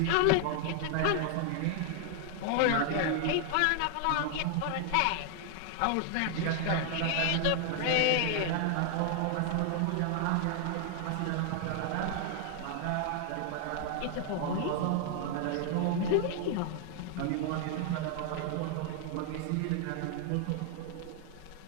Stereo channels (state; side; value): different; both; correlation 0.00